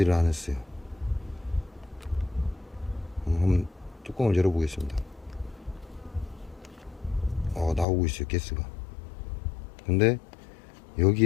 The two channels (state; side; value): drops out; right; at 7.9 s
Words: 않았어요. 한번 뚜껑을 열어보겠습니다. 나오고 있어요, 가스가. 근데